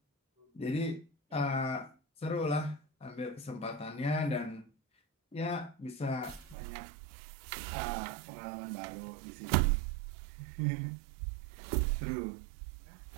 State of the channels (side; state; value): left; drops out; at 6.6 s